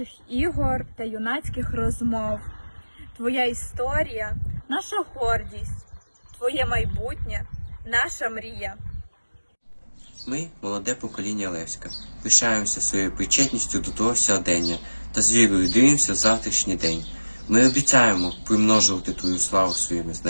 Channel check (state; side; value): inverted; both; correlation -1.00